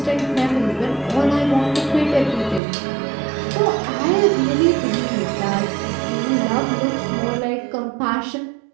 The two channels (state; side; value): drops out; left; at 2.6 s